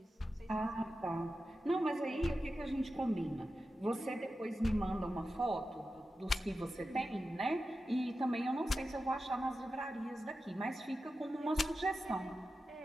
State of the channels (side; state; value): both; normal; correlation 0.92